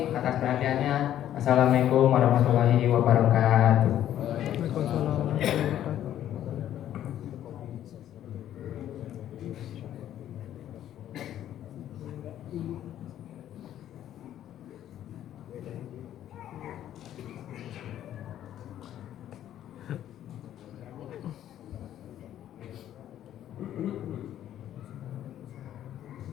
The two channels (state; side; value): quieter; right; 11.5 dB